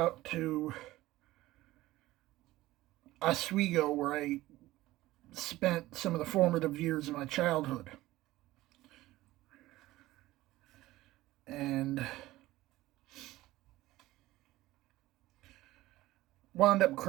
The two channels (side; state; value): left; quieter; 17.1 dB